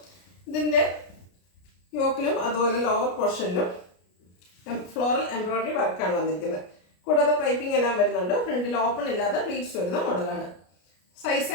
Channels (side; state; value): right; late; 33 ms